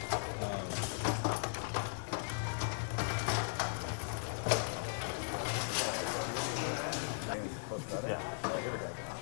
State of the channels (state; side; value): silent; right; digital silence